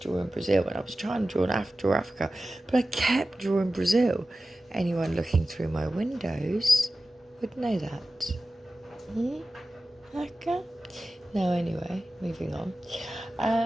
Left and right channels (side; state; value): both; normal; correlation 0.95